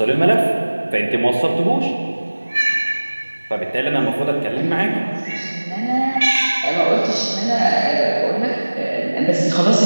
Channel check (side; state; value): both; inverted; correlation -1.00